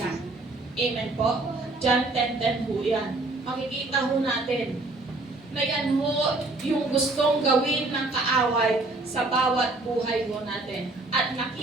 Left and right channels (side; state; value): left; quieter; 3.1 dB